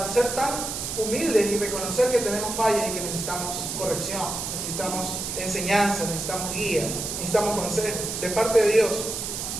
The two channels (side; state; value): right; noise; hiss, 4 dB below the sound